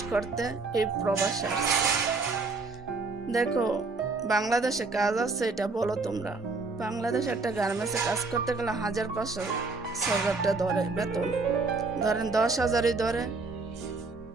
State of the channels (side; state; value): left; quieter; 3.8 dB